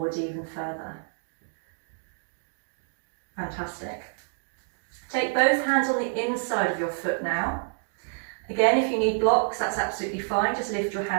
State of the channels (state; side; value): silent; left; digital silence